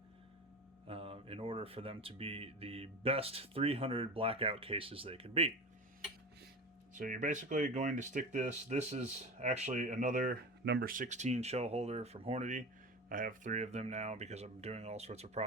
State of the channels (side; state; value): both; normal; correlation 0.30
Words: in order for them to be the best 300 Blackout cases they can be. So you're basically going to stick this. This is actually another number 16 shell holder from Hornady. I have 3 of them now because I'm doing all sorts of